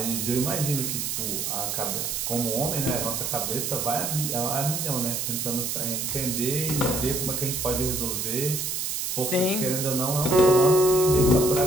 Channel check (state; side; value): noise; right; hiss, 2 dB below the sound